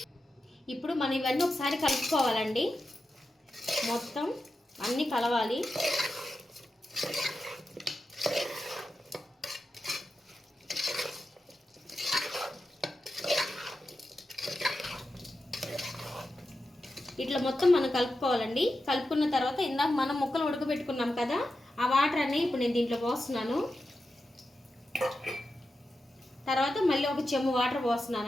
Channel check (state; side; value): normal; both; correlation 0.90